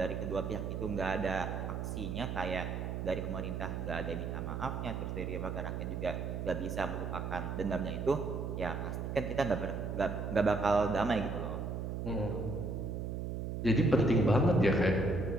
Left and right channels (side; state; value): right; noise; hum, 3 dB below the sound